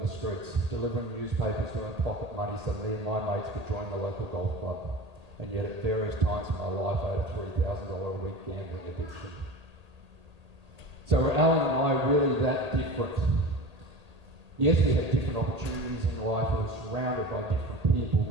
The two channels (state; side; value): late; left; 1.8 ms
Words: the streets, delivering newspapers to earn pocket money so me and my mates could join the local golf club. And yet at various times in my life, I had a $3,000 a week gambling addiction. So were Alan and I really that different? Yes, we had different opportunities in life, we were surrounded by different people,